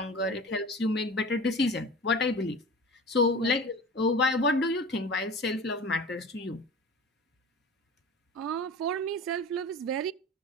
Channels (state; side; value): normal; both; correlation 0.36